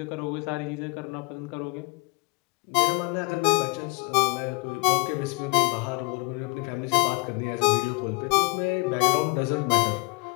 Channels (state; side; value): quieter; right; 29.5 dB